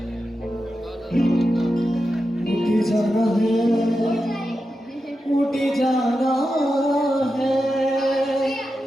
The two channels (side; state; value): both; normal; correlation 0.90